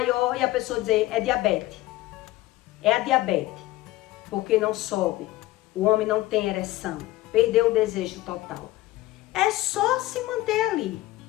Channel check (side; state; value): right; quieter; 17.0 dB